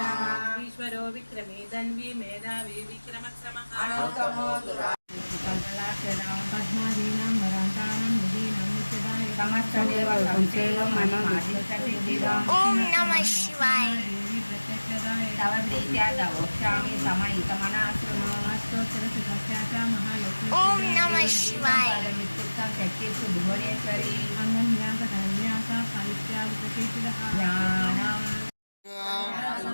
ईश्वरो विक्रमे धन्वी मेधावी विक्रमक्रमः अनुत्तमो दुराकल्पलाक्षणां पद्मादीनां वरान्तानां निधीनां नित्यदाय समस्तदेव संसेवं मनोदिष्टसिद्धिदां ॐ नमः शिवाय तव प्रीत्या तवोक्षामि समयितमनाश्रमास्तोत्रसुखस्याचा महालक्ष्मी ॐ नमः शिवाय मित्युक्तं शक्तिस्तु भुवनेश्वरी अन्वन्यासकन्यासा साहित्यावितकेचिदः ज्ञानम्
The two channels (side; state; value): both; inverted; correlation -1.00